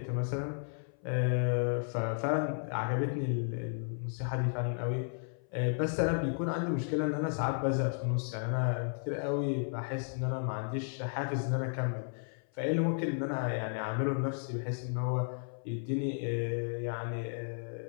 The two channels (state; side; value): silent; right; 55 dB below the other